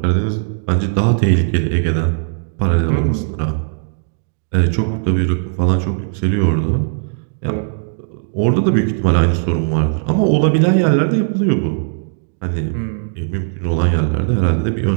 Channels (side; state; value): left; silent; digital silence